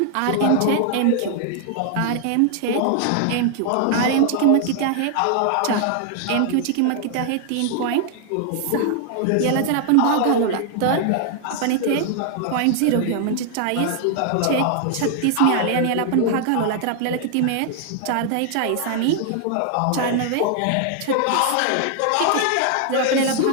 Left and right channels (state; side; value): different; both; correlation 0.00